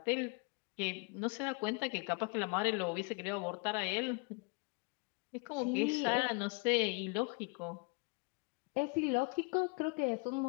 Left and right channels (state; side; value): quieter; right; 31.8 dB